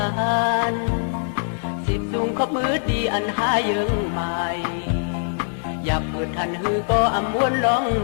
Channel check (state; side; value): silent; right; digital silence